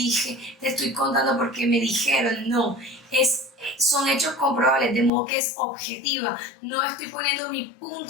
te estoy contando porque me dijeron, no. Son hechos comprobables, de modo que es objetiva. No estoy poniendo mi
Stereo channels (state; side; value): drops out; right; at 5.1 s